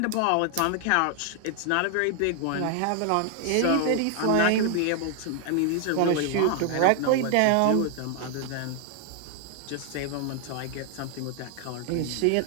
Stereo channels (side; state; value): both; different; correlation 0.00